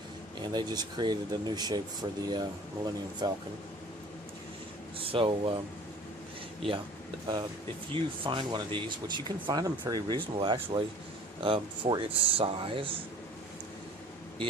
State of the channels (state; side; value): normal; both; correlation 0.47